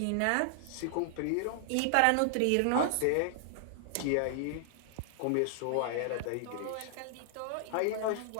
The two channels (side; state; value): both; different; correlation -0.01